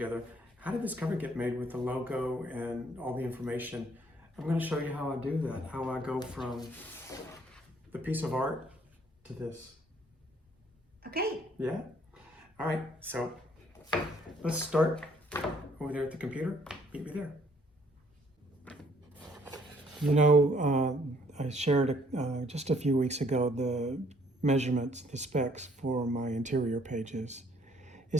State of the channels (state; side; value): normal; both; correlation 0.63